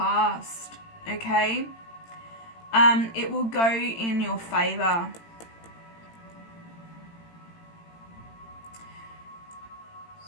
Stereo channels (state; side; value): late; right; 18 ms